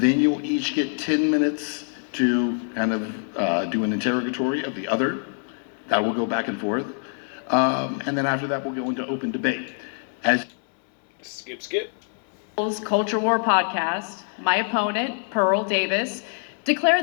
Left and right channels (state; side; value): silent; right; 57 dB below the other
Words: you'll each get 10 minutes to kind of do an interrogatory of the other. That will go back and forth. And then after that, we'll go into open debate. Skip. Culture War podcast, my opponent, Pearl Davis,